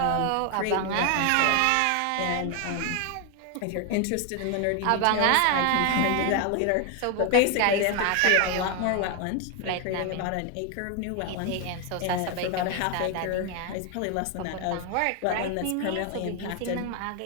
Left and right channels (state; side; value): different; both; correlation 0.01